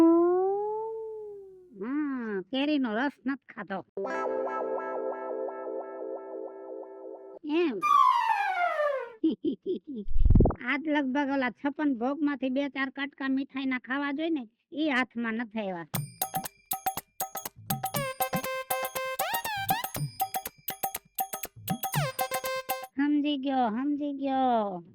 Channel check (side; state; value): both; identical; correlation 1.00